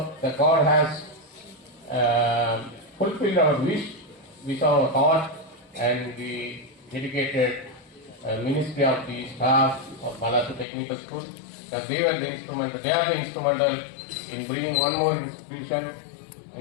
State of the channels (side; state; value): right; drops out; at 10.7 s